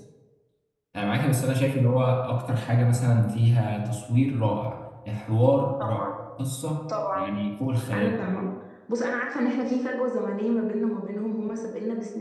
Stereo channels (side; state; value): both; identical; correlation 1.00